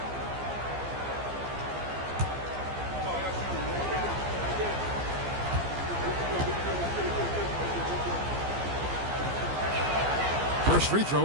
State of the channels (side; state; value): left; late; 15 ms